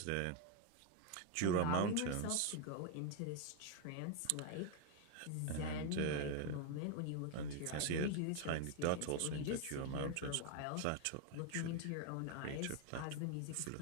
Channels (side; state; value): both; different; correlation 0.01